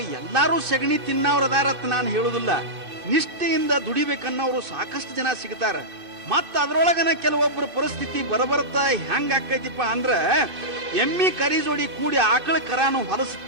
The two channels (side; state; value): left; late; 2.6 ms